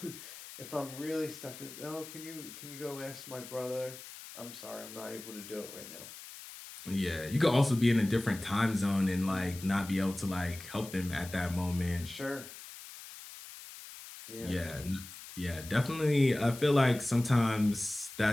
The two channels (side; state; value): left; noise; hiss, 14 dB below the sound